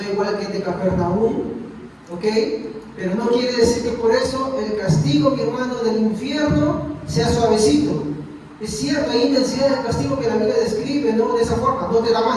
igual que el de Capernaum, ¿ok? Pero no quiere decir que por eso el castigo, mi hermano, del infierno sea suavecito. Es cierto, hay intensidad del castigo que la Biblia describe, ¿no? De esa forma, no te da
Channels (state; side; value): identical; both; correlation 1.00